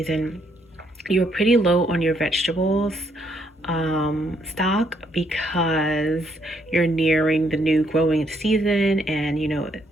you're pretty low on your vegetables stock because you're nearing the new growing season, and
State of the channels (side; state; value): both; normal; correlation 0.72